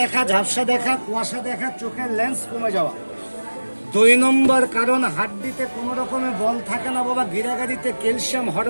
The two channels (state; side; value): inverted; both; correlation -1.00